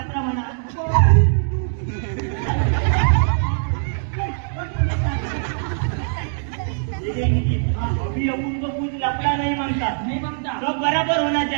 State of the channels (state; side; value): silent; left; digital silence